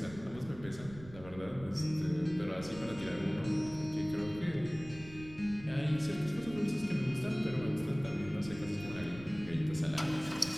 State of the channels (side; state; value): right; noise; rumble, 16 dB below the sound